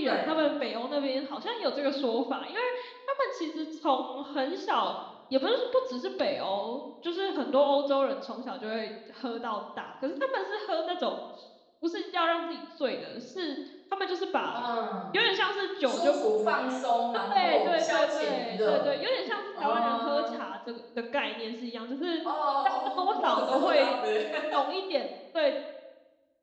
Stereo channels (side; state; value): both; identical; correlation 1.00